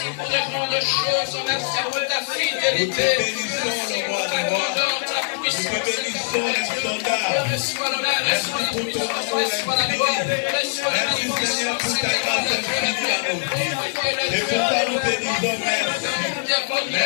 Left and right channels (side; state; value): right; silent; digital silence